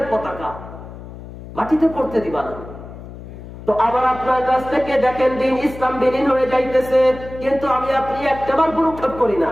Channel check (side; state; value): left; noise; hum, 14 dB below the sound